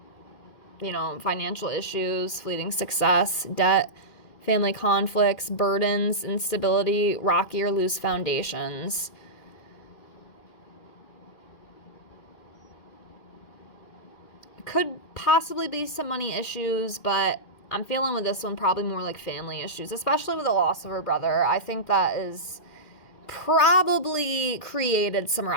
financial issues, fleeting success, debt, family conflicts, burdens, instability, rocky or loose foundations. Could possibly be some money issues, but I'm feeling with this one probably more like family issues, especially with the loss of her brother. I think that is probably created some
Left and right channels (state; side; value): late; right; 2.5 ms